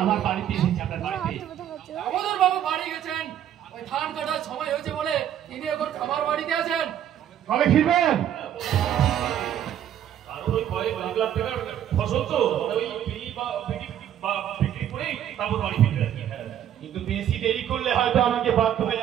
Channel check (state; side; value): quieter; left; 10.4 dB